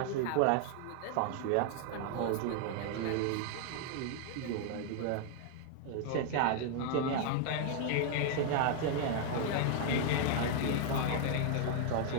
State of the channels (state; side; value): different; both; correlation 0.00